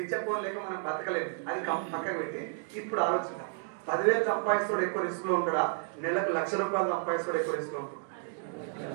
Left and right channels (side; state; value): left; silent; 57 dB below the other